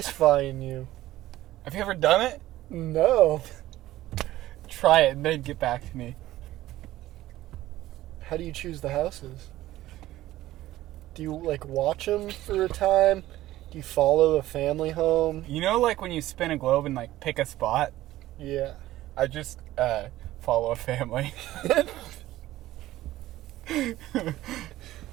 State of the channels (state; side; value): quieter; left; 15.4 dB